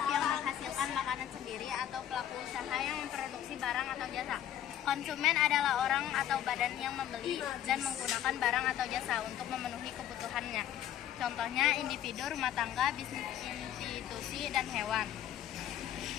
yang menghasilkan makanan sendiri atau pelaku usaha yang memproduksi barang atau jasa. Konsumen adalah orang atau badan yang membeli dan menggunakan barang atau jasa untuk memenuhi kebutuhannya. Contohnya individu, rumah tangga, bisnis, institusi, dan hewan.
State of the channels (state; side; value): quieter; right; 11.1 dB